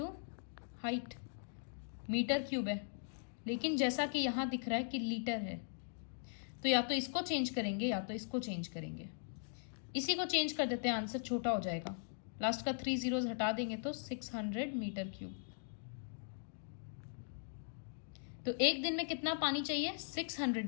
height, metre cube है, लेकिन जैसा कि यहां दिख रहा है कि लीटर है, तो या तो इसको चेंज करेंगे या तो इसको चेंज करेंगे। इसी को चेंज कर देते हैं, आंसर छोटा हो जाएगा। लास्ट का 3 जीरोस हटा देंगे तो 600 मीटर क्यूब। तो एक दिन में कितना पानी चाहिए? 600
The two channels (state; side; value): silent; right; digital silence